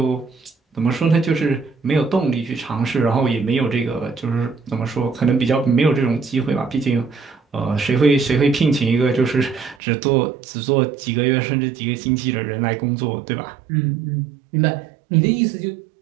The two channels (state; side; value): drops out; left; at 9.8 s